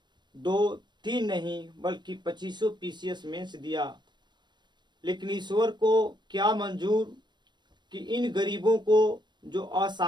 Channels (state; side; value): late; left; 0.22 ms